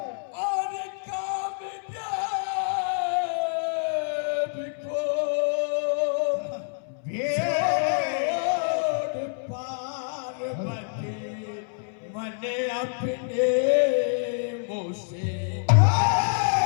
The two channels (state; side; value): silent; right; 60 dB below the other